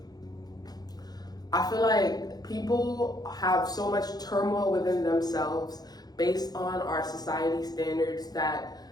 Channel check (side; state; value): right; late; 0.19 ms